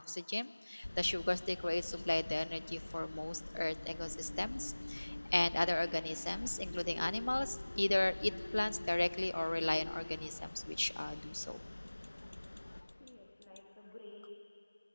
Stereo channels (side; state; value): both; inverted; correlation -1.00